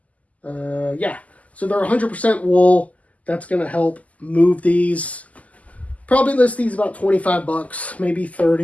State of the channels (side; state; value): right; late; 0.073 ms